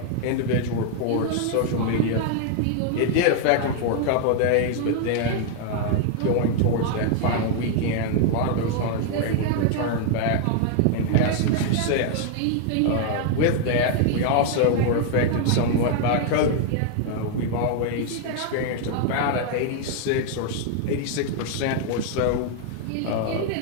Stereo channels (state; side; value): different; both; correlation 0.00